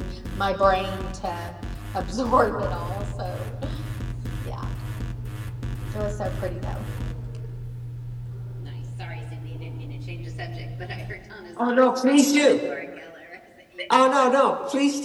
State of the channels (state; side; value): identical; both; correlation 1.00